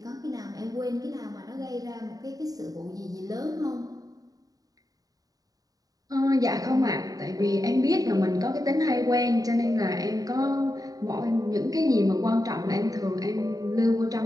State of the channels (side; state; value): left; late; 0.18 ms